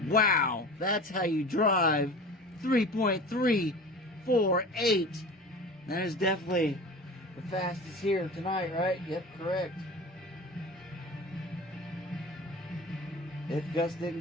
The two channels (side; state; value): both; normal; correlation 0.36